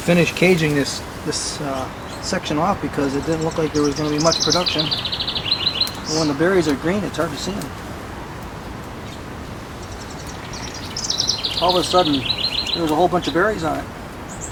caging this section off because it didn't look like there was going to be much production. And when the berries are green, it's hard to see them. All of a sudden, there was a whole bunch of berries on it.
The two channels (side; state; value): both; identical; correlation 1.00